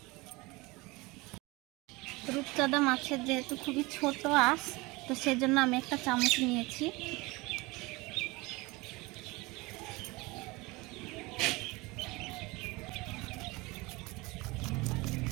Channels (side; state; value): left; quieter; 23.6 dB